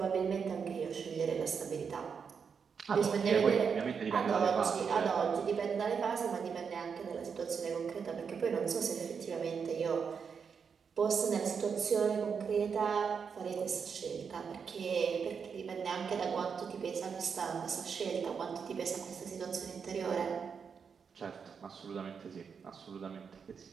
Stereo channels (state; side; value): quieter; left; 6.3 dB